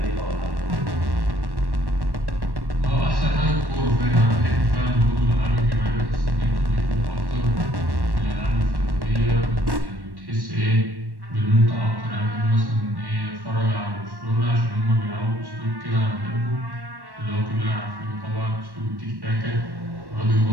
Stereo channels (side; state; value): left; late; 1.1 ms